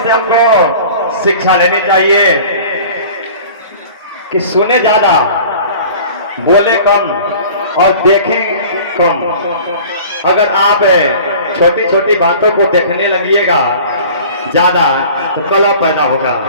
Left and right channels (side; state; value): both; inverted; correlation -0.43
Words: से हमको शिक्षा लेनी चाहिए कि सुने ज्यादा, बोले कम और देखें कम। अगर आप छोटी छोटी बातों को देखने लगिएगा ज्यादा, तो कलह पैदा होगा।